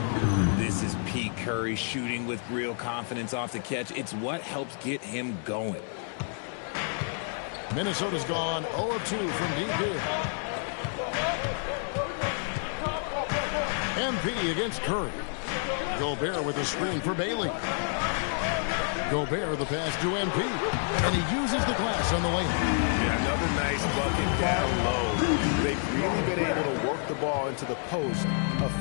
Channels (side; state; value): right; silent; 57 dB below the other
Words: This is Pete Curry shooting with real confidence off the catch. It's what helps get him going. Minnesota's gone 0 of 2 from deep here. MP against Curry. Gobert with a screen for Bailey. Gobert the pass to MP. And he uses the glass on the way. Yeah, another nice bucket down low. They've really been able to work the ball into the post